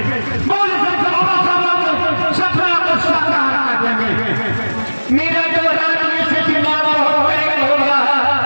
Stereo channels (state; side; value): inverted; both; correlation -1.00